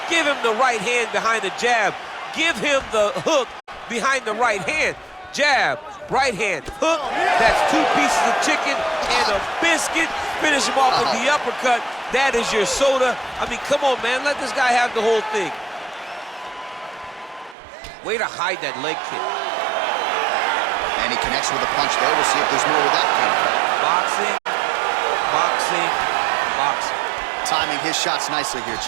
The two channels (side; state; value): left; drops out; at 17.6 s